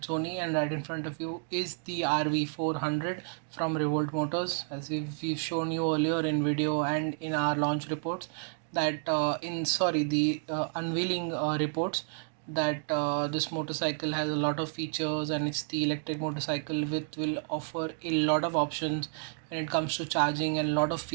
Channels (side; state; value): left; silent; 57 dB below the other